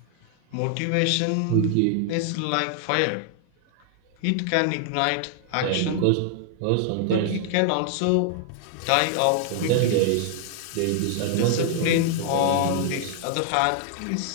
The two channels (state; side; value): different; both; correlation 0.00